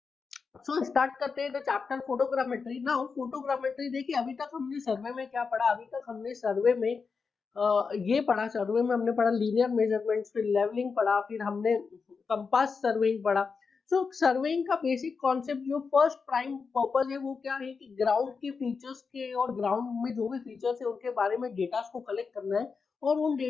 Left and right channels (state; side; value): quieter; right; 5.1 dB